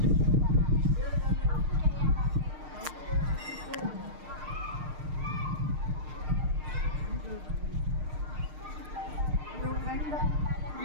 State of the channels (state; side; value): late; left; 6.5 ms